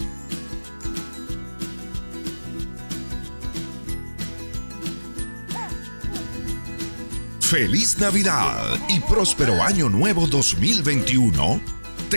Feliz Navidad y próspero Año Nuevo 2021.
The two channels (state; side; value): inverted; both; correlation -1.00